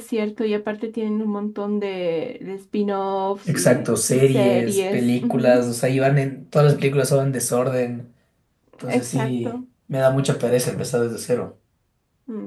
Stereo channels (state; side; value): identical; both; correlation 1.00